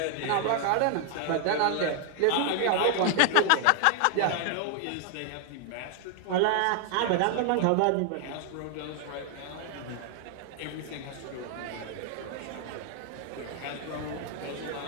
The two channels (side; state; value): both; different; correlation 0.00